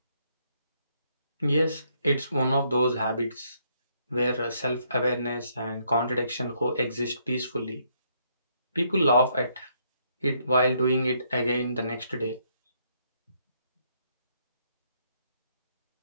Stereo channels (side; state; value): both; inverted; correlation -0.72